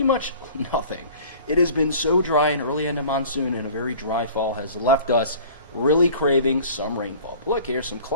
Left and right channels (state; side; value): inverted; both; correlation -0.46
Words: much nothing. It has been so dry, and early end of monsoon and a very dry fall has left us really craving some rainfall. But look, here's some